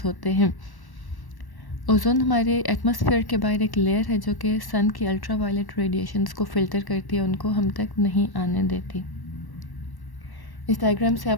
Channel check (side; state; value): right; late; 1.1 ms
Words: होते हैं. ओजोन हमारे एटमॉस्फेयर के बाहर एक लेयर है जो कि सन की अल्ट्रावायलेट रेडिएशंस को फ़िल्टर करती है, उनको हम तक नहीं आने देती. इस डायग्राम से